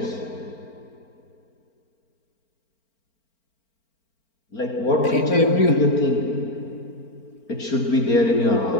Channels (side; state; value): right; late; 4.4 ms